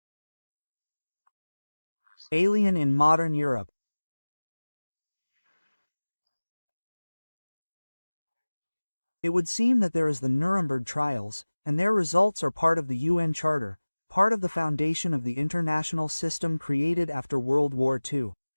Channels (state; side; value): inverted; both; correlation -1.00